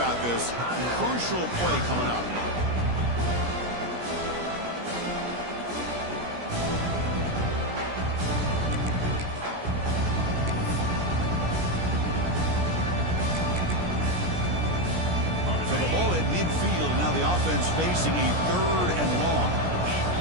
this. Crucial play coming up. So the ball at midfield, and now the offense facing a 3rd and long.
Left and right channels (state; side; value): late; left; 17 ms